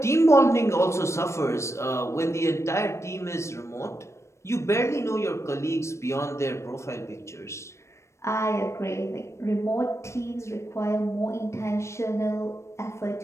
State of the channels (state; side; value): late; right; 0.13 ms